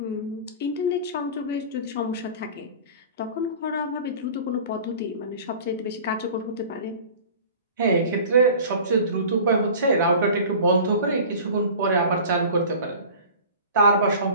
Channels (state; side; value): inverted; both; correlation -0.40